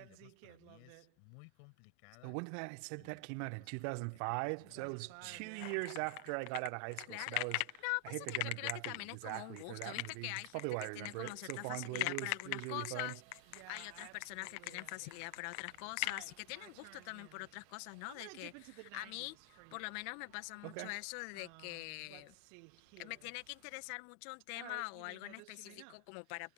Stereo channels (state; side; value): different; both; correlation 0.00